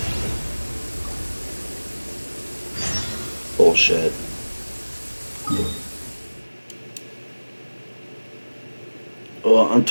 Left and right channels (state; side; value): inverted; both; correlation -1.00